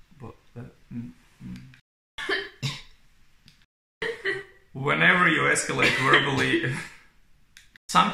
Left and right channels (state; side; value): identical; both; correlation 1.00